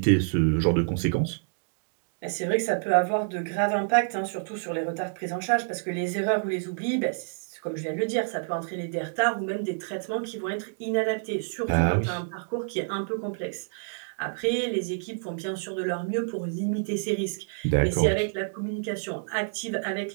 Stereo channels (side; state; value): left; silent; digital silence